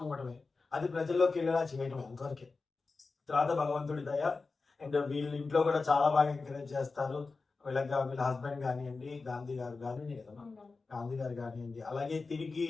ఇవ్వడమే, అది ప్రజల్లోకి వెళ్ళేలా చేయడమే అంతవరకే. తర్వాత భగవంతుడి దయ. అండ్ వీళ్ళ ఇంట్లో కూడా చాలా బాగా ఎంకరేజ్ చేస్తారు. వీళ్ళ హస్బెండ్ కానివ్వండి, గాంధీ గారు కానివ్వండి, అలాగే తిరిగి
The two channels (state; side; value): quieter; right; 4.1 dB